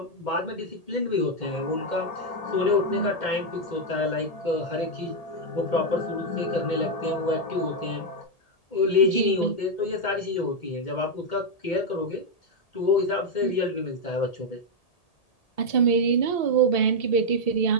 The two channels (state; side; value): late; right; 1.8 ms